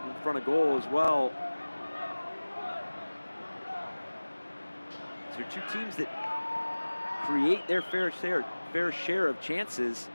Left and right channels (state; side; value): inverted; both; correlation -1.00